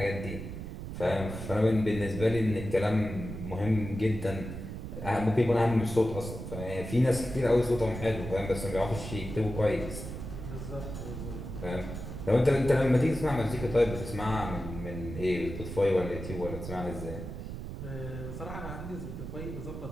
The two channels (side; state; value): right; noise; rumble, 8 dB below the sound